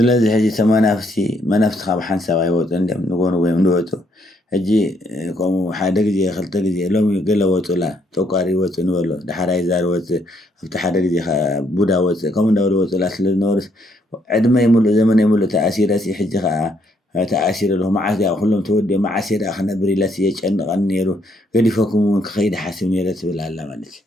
ሄጂ ተመናፍሲ መናፍስ ካብ ሓንሳብ አይወጡ እንደም ንጎኑ ወይም ንወጡ ሄጂ ቆሙ ሓደ ግዜ ክልተ ግዜ ሎሚ ገለ ወጡላ ተቋሪ ወጡ ንበሎ ድሓራይ ዛር ወጡ ኣብቲ ሓደ ግዜ ቡዳ ወጡ ከምኡ እንዳበሉ ወጡላ ስለዝነበሩስ ዕድመ ይሙሉ ዘመን ይሙሉ ተኣሲረሲ ሕጂ ከዓ ተኣሲረ له معاذ كلهم تودي معاصر اخنا بريلاس يጨንቀን ነይሩ ገዲፈኩም ከኸይድ ሓስብ ነይረ ትብል ኣላ ማለት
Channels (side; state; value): both; normal; correlation 0.72